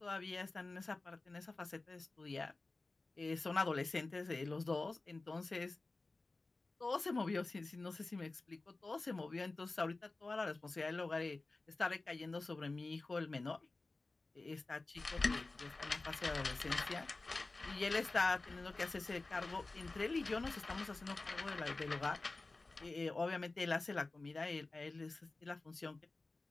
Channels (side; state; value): right; quieter; 3.3 dB